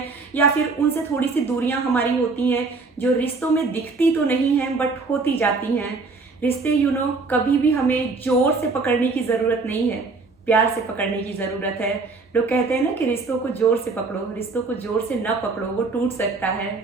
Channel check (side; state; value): left; quieter; 4.0 dB